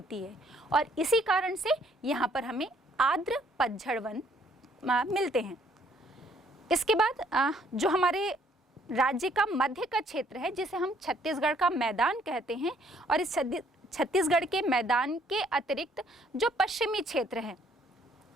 है, और इसी कारण से यहाँ पर हमें आर्द्र पतझड़ वन मिलते हैं। इसके बाद जो हमारे राज्य का मध्य का क्षेत्र है, जिसे हम छत्तीसगढ़ का मैदान कहते हैं, और इस छत्तीसगढ़ के मैदान के अतिरिक्त जो पश्चिमी क्षेत्र है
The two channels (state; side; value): normal; both; correlation 0.64